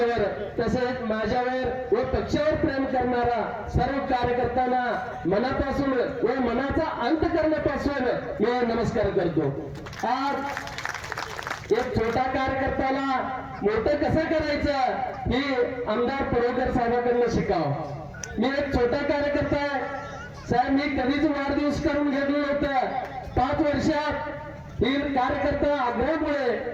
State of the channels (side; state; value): both; identical; correlation 1.00